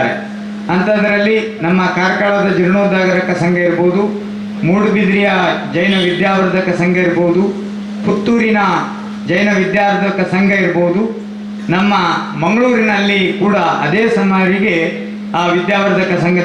ಅಂಥದ್ರಲ್ಲಿ ನಮ್ಮ ಕಾರ್ಕಳದ ಜೀರ್ಣೋದ್ಧಾರಕ ಸಂಘ ಇರ್ಬೋದು, ಮೂಡುಬಿದ್ರಿಯ ಜೈನ ವಿದ್ಯಾವರ್ಧಕ ಸಂಘ ಇರ್ಬೋದು, ಪುತ್ತೂರಿನ ಜೈನ ವಿದ್ಯಾವರ್ಧಕ ಸಂಘ ಇರ್ಬೋದು, ನಮ್ಮ ಮಂಗಳೂರಿನಲ್ಲಿ ಕೂಡ ಅದೇ ಸುಮಾರಿಗೆ ಆ ವಿದ್ಯಾವರ್ಧಕ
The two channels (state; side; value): identical; both; correlation 1.00